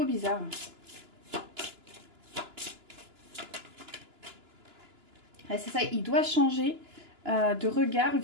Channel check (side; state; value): left; late; 2.9 ms